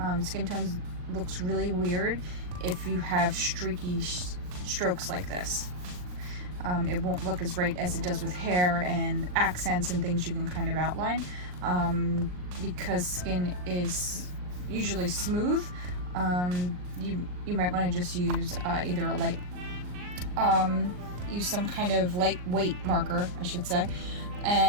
Skin tones looks really weird if you have streaky strokes like this. It won't look as right as it does with hair and accents and things you can kind of outline. Because skin is usually smooth, you might want to just use either a light, use some kind of lightweight marker, I should say,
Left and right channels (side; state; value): left; late; 39 ms